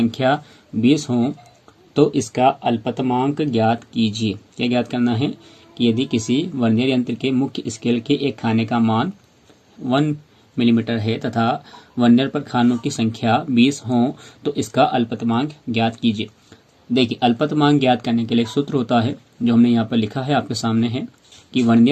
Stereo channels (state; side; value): identical; both; correlation 1.00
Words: 20 हो तो इसका अल्पतमांक ज्ञात कीजिए। क्या ज्ञात करना है कि यदि किसी वर्नियर यंत्र के मुख्य स्केल के एक खाने का मान 1 मिलीमीटर है तथा वर्नियर पर खानों की संख्या 20 हो तो इसका अल्पतमांक ज्ञात कीजिए। देखिए, अल्पतमांक ज्ञात करने के लिए सूत्र होता है जो हमने यहाँ पर लिखा है, आपके सामने है कि